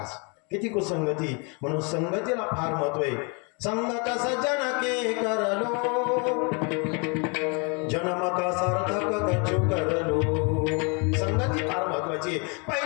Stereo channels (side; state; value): right; quieter; 34.0 dB